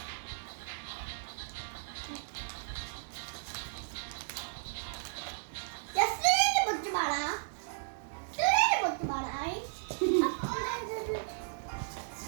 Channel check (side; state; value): left; silent; digital silence